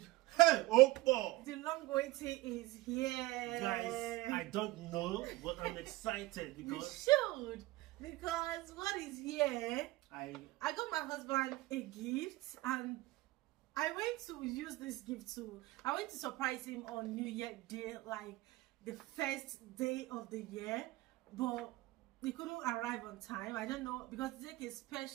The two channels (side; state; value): left; quieter; 19.6 dB